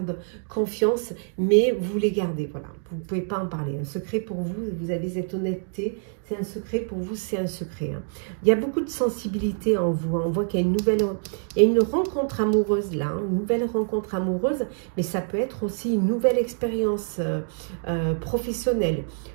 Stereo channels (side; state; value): left; silent; 61 dB below the other